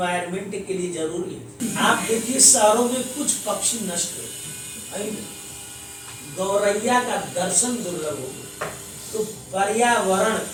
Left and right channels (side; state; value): both; identical; correlation 1.00